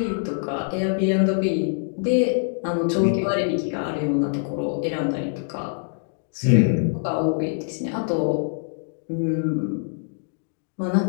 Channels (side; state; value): right; silent; digital silence